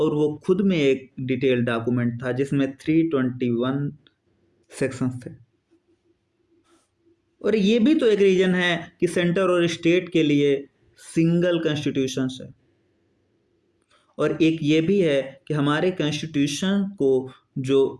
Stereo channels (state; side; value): identical; both; correlation 1.00